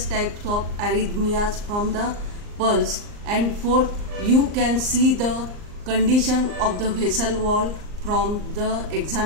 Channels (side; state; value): left; late; 39 ms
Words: types of arrhythmias from the pulse. And fourth, you can see the condition of the vessel wall from the